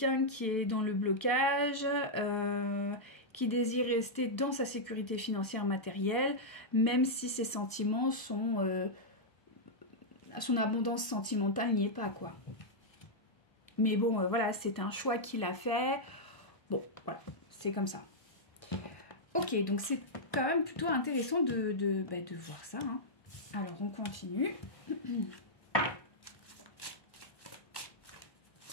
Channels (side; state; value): right; late; 1.2 ms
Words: qui est dans le blocage, qui désire rester dans sa sécurité financière matérielle, même si ses sentiments sont... son abondance sentimentale n'y est pas, quoi. Mais bon, voilà, c'est un choix qu'il a fait. Bon, voilà, c'est comme ça. Ok, donc c'est quand même plutôt intéressant de voir ça. Hein. Alors, on continue.